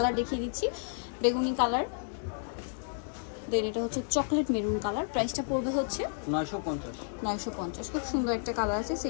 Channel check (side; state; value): right; silent; digital silence